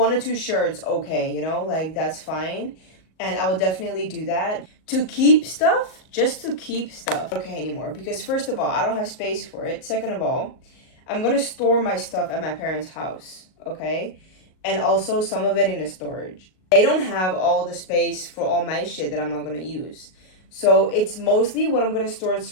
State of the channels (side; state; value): right; late; 38 ms